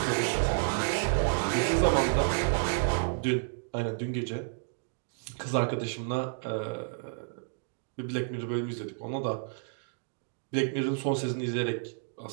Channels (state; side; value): silent; left; digital silence